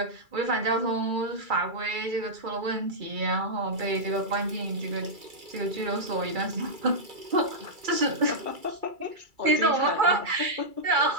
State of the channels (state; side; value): late; left; 2.3 ms